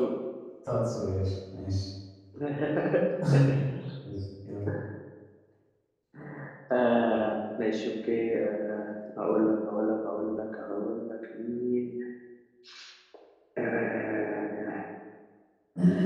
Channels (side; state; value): both; identical; correlation 1.00